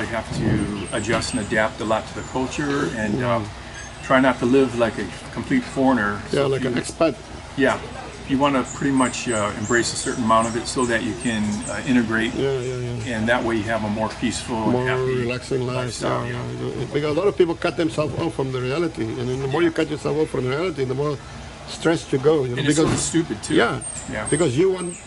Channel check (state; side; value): identical; both; correlation 1.00